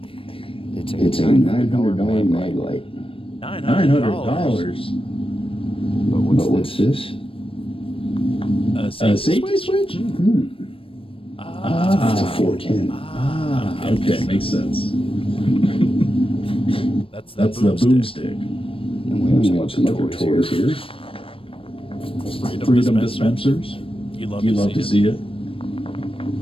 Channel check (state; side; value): late; right; 0.26 ms